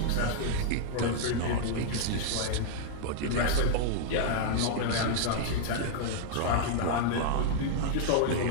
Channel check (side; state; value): both; different; correlation -0.01